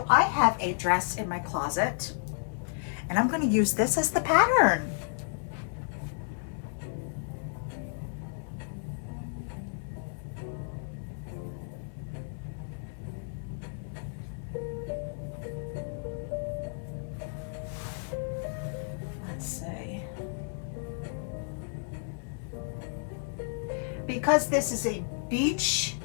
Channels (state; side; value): silent; right; 56 dB below the other